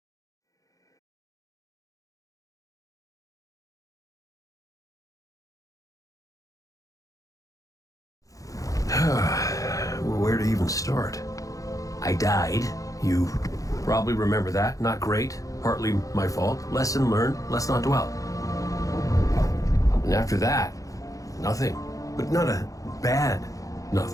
Where to even start? I died. You probably remember that. Not great. Partly my fault. Lesson learned. Let's not dwell. And after that, nothing. But not a bad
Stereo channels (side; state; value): right; late; 0.16 ms